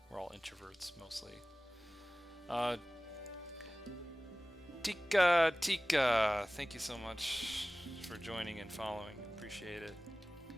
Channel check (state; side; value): normal; both; correlation 0.97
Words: We're all introverts mostly. Tika, thank you so much for joining and following. Appreciate it.